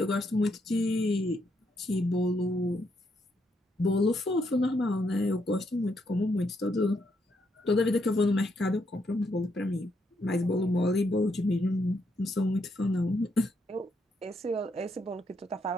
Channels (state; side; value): normal; both; correlation 0.77